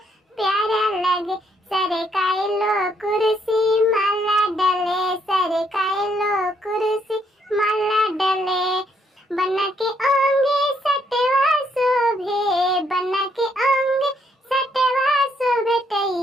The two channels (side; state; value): both; normal; correlation 0.72